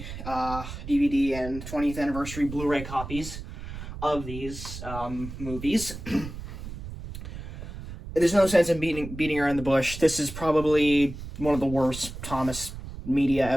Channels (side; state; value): right; noise; rumble, 10 dB below the sound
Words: DVD and 20th anniversary Blu-ray copies of these movies. There's no sense in beating around the bush. This is probably one of the worst Thomas media